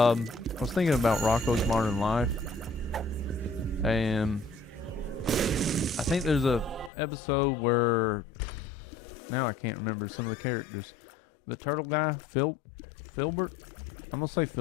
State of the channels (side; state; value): right; drops out; at 6.9 s